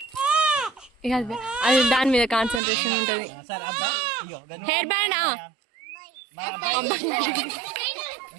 అది దాని మీద కాన్సన్ట్రేషన్ ఉంటది. హెయిర్ బ్యాండ్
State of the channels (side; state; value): left; drops out; at 2.6 s